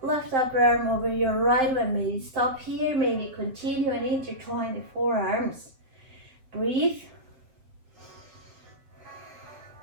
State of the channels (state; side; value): late; left; 7.6 ms